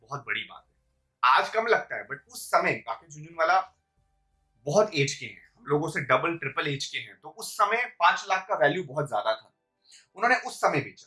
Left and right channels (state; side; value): identical; both; correlation 1.00